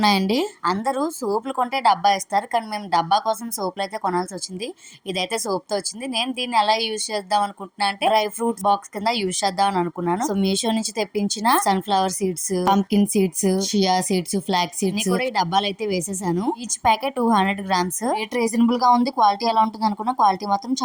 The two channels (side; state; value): both; identical; correlation 1.00